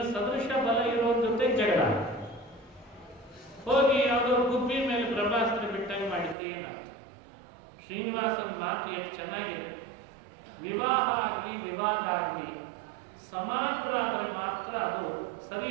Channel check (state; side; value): drops out; left; at 6.4 s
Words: ಸದೃಶ ಬಲ ಇರೋರ ಜೊತೆ ಜಗಳ. ಹೋಗಿ ಯಾವುದೋ ಗುಬ್ಬಿ ಮೇಲೆ ಬ್ರಹ್ಮಾಸ್ತ್ರ ಬಿಟ್ಟಂಗೆ ಮಾಡಿದ್ರೆ ಏನಾಗ್ತದೆ? ಶ್ರೀನಿವಾಸನ ಮಾತು ಎಷ್ಟು ಚೆನ್ನಾಗಿದೆ. ವಿವಾಹ ಆಗಲಿ ವಿವಾದ ಆಗಲಿ ಸಮಾನರಾದರೆ ಮಾತ್ರ ಅದು ಸರಿ